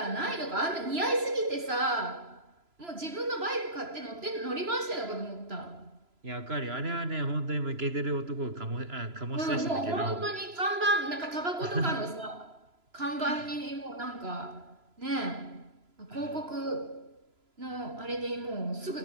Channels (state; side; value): late; left; 3.0 ms